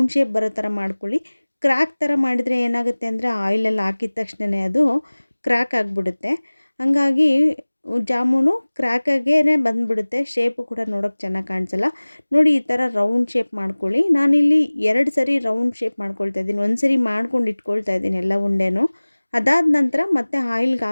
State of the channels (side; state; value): both; inverted; correlation -1.00